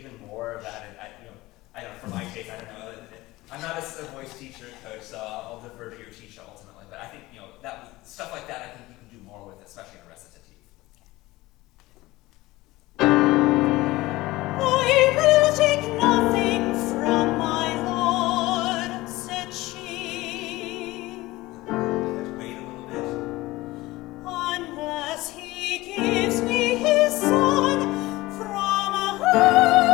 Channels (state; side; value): quieter; right; 19.2 dB